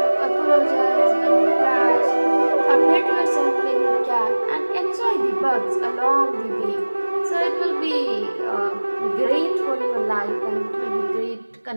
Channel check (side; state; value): both; inverted; correlation -1.00